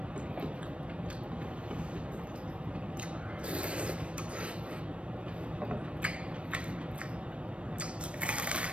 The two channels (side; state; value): left; late; 0.061 ms